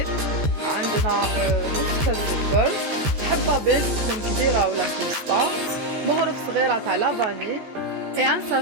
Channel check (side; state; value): left; late; 14 ms